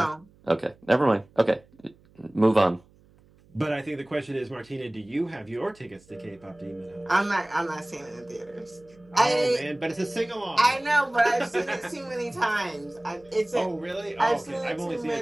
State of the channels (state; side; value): noise; right; hum, 29 dB below the sound